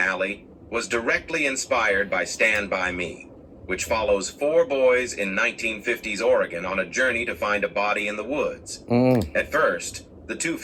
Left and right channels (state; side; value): identical; both; correlation 1.00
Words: was directly inspired by Stand By Me, which follows four boys in 1950s Oregon on a journey to find a body in the woods. At first, the two